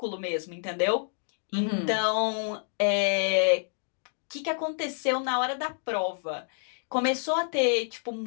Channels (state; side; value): silent; right; digital silence